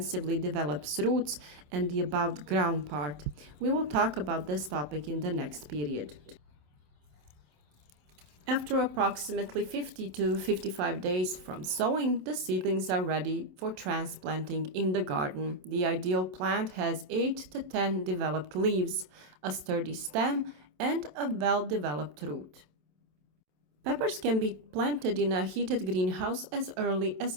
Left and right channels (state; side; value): late; left; 27 ms